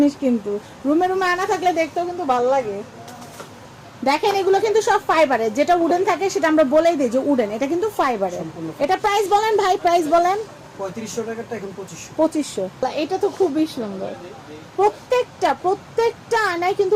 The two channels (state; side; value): identical; both; correlation 1.00